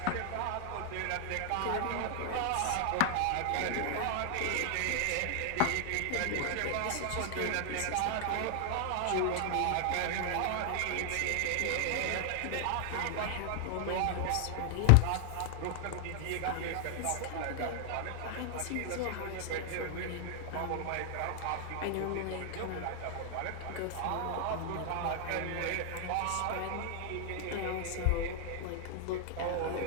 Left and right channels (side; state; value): both; different; correlation 0.00